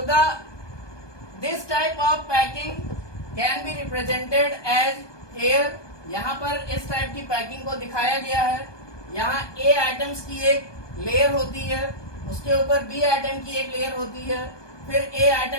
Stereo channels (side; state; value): right; late; 1.2 ms